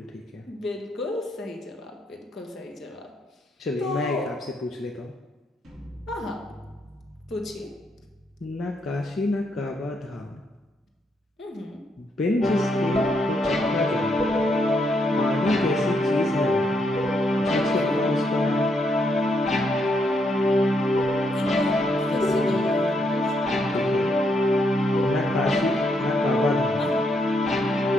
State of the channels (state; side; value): normal; both; correlation 0.77